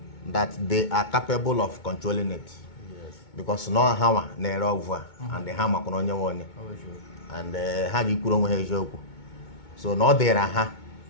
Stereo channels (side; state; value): right; late; 2.2 ms